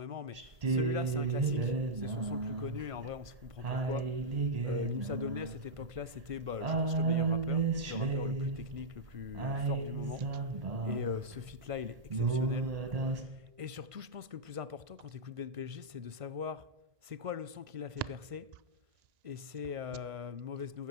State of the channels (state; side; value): late; left; 1.5 ms